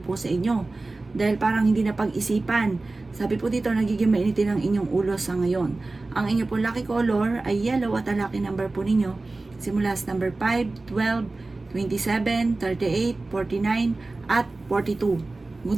sa inyo. Dahil parang hindi na pag-isipan. Sabi po dito, nagiging mainitin ang inyong ulo sa ngayon. Ang inyo po lucky color ay yellow at ang lucky number po ninyo simula sa number 5, 12, 27, 38, 49, at 42.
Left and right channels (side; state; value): left; quieter; 3.3 dB